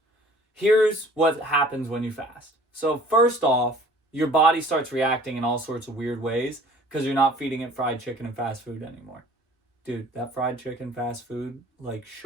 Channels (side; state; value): both; normal; correlation 0.51